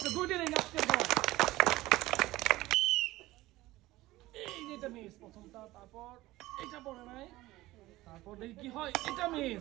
2টি রিং আজকে পড়ে। এই যে এটা মিস প্রথমটা, তারপর এটা পড়ে নাই, তারপর দেখি কি হয়। এটা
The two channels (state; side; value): quieter; left; 17.8 dB